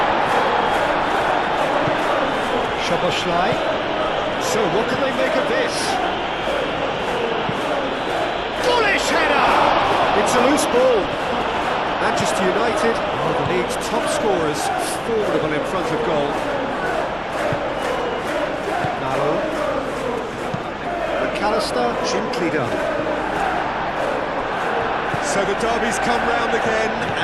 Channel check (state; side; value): identical; both; correlation 1.00